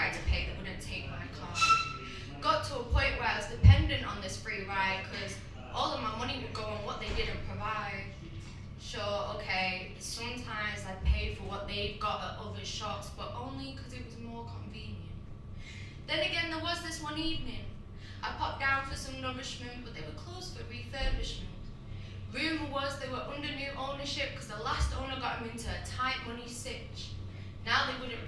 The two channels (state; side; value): identical; both; correlation 1.00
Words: to pay, they wouldn't take my card. Got to a point where I was dependent on this free ride because all of my money would go on what they didn't provide. Sure, okay, sometimes I paid for what they've got at other shops, but only because it was more convenient. Then again, there was this one evening. I popped down for some nourishment, but they were closed for refurbishment. Rumour was they were under new ownership because the last owner got them into a tight money sitch. Now they wouldn't